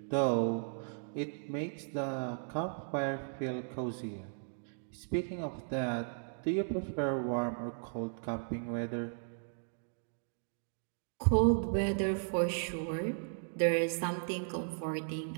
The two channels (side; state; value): left; silent; digital silence